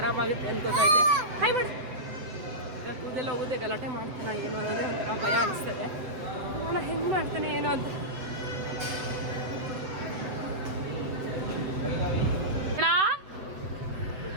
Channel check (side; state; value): left; late; 7.9 ms